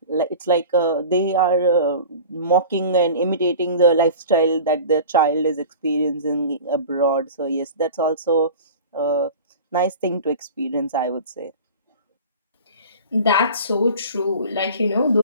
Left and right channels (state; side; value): inverted; both; correlation -0.38